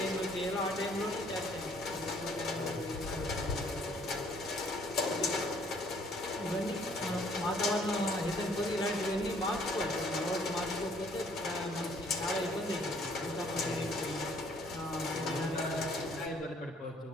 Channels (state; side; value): normal; both; correlation 0.61